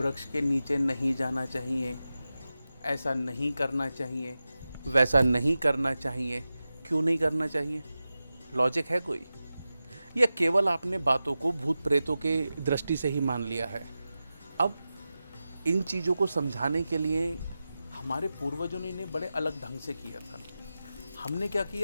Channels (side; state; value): both; inverted; correlation -0.94